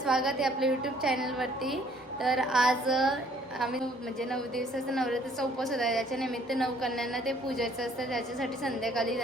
आहे आपल्या यूट्यूब चॅनलवरती. तर आज आम्ही म्हणजे 9 दिवसाचा नवरात्रीचा उपवास होता. त्याच्या निमित्त 9 कन्यांना ते पूजायचं असतं. त्याच्यासाठी संध्याकाळी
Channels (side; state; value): both; normal; correlation 0.60